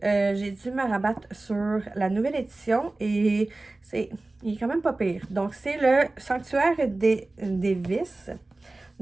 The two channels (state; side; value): quieter; left; 3.0 dB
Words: j'ai dû me rabattre sur la nouvelle édition et il est quand même pas pire. Donc, c'est le Sanctuaire des Vices.